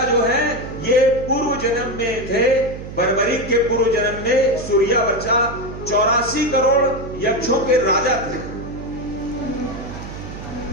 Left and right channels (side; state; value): right; noise; hum, 11 dB below the sound